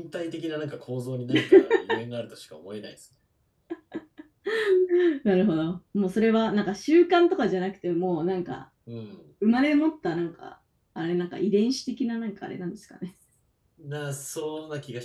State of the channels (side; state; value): both; identical; correlation 1.00